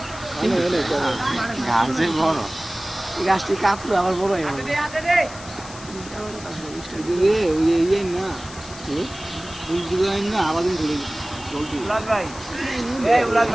গাছে বড়। এই গাছটি কাপড় আবার বড় হয়ে গেল রে ওই ইয়ে না ফুল ডিজাইন না আলাদিন করে জলদি। উলাদ ভাই এই উলাদ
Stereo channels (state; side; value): noise; left; hiss, 16 dB below the sound